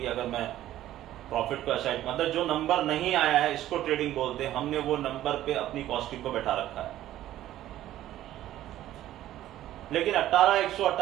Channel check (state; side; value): quieter; left; 13.4 dB